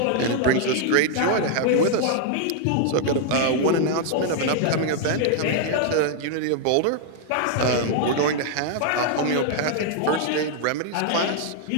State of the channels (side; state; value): both; different; correlation 0.00